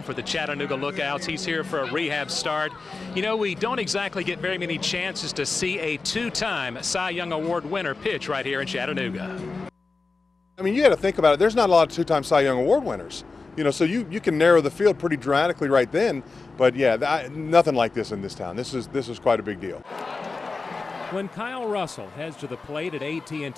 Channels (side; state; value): right; quieter; 4.0 dB